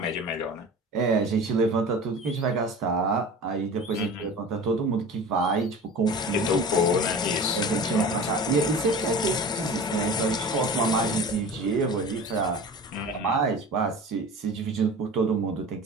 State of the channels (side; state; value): both; normal; correlation 0.37